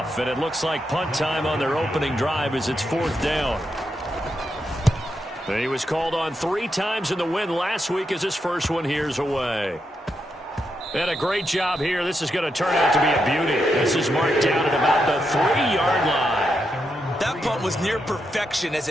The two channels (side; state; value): both; normal; correlation 0.83